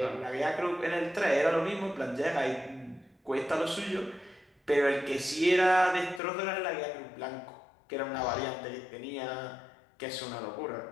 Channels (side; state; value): right; drops out; at 6.2 s